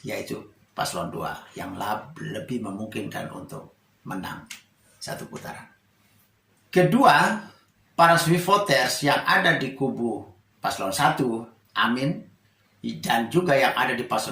yaitu paslon 2 yang lebih memungkinkan untuk menang satu putaran. Kedua, para swing voters yang ada di kubu paslon 1, Amin, dan juga yang ada di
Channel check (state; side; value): identical; both; correlation 1.00